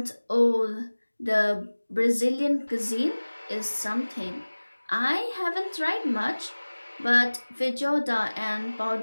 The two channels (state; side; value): inverted; both; correlation -1.00